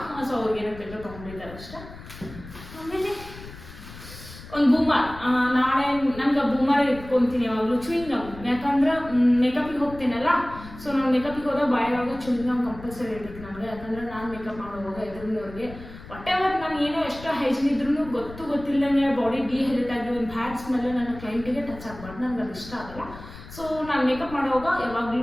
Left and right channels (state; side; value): noise; left; rumble, 15 dB below the sound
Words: ಸೊ ಅವ್ರಿಗೆ ಏನೋ ಬೇಕು ತೊಗೊಂಡಿದ್ದಾರೆ ಅಷ್ಟೇ. ಆಮೇಲೆ ಒಂದು ಬೂಮರ್. ನಾಳೆ ನಮ್ಗೆ ಬೂಮರ್ ಇಟ್ಕೊತೀನಿ ಯಾವಾಗಲೂ. ಚೂಯಿಂಗ್ ಗಮ್, ಯಾಕಂದ್ರೆ ಮೇಕಪಿಗೆ ಹೋಗ್ತೀನಲ್ಲ. ಸೊ ನಾನು ಮೇಕಪಿಗೆ ಹೋದಾಗ ಬಾಯಿಯೊಳಗೆ ಚೂಯಿಂಗ್ ಗಮ್ ಕಂಪಲ್ಸರಿ ಇರ್ಬೇಕು ನನಗೆ. ಯಾಕಂದ್ರೆ ನಾನು ಮೇಕಪ್ ಮಾಡೋವಾಗ ಎದುರಿನವ್ರಿಗೆ ವಾಟೆವರ್ ನಾನು ಏನೋ ಎಷ್ಟು ಹೈಜಿನ್ ಇದ್ರೂ ಗೊತ್ತಿಲ್ಲದಂಗೆ ಬಾಡಿ ಡಿಹೈಡ್ರೇಟ್ ಆಗಿ ಒಂದು ಬ್ಯಾಡ್ ಸ್ಮೆಲ್ಲು ನನ್ನ ಕ್ಲೈಂಟಿಗೆ ಟಚ್ ಆಗಬಾರ್ದು. ನನಗೆ ಅದು ಇಷ್ಟ ಆಗಲ್ಲ. ಸೊ ನಾನು ಮೇಕಪ್ ಮಾಡುವಾಗ